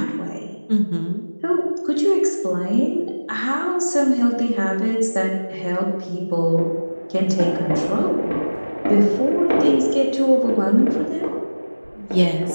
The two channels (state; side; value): inverted; both; correlation -1.00